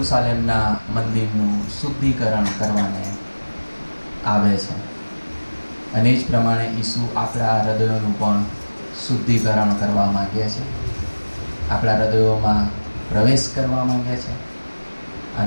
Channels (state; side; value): inverted; both; correlation -1.00